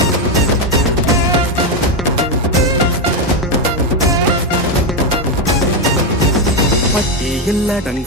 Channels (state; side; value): normal; both; correlation 0.07